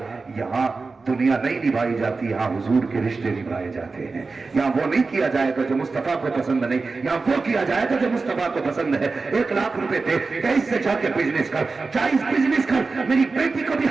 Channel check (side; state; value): left; quieter; 4.1 dB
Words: यहाँ दुनिया नहीं निभाई जाती, यहाँ हुजूर के रिश्ते निभाए जाते हैं। यहाँ वो नहीं किया जाएगा जो मुस्तफा को पसंद नहीं, यहाँ वो किया जाएगा जो मुस्तफा को पसंद है। 1 लाख रुपए दे, इससे जाके बिजनेस कर, जायज बिजनेस कर, मेरी बेटी को भी